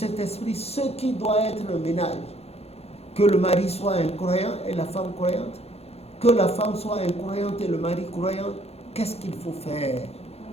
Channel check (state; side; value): late; right; 0.30 ms